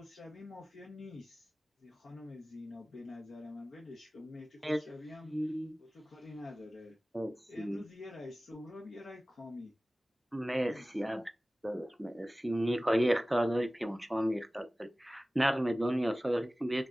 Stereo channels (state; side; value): normal; both; correlation 0.97